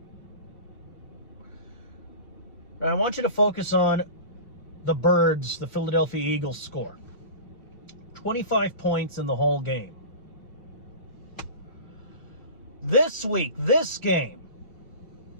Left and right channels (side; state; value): right; late; 2.0 ms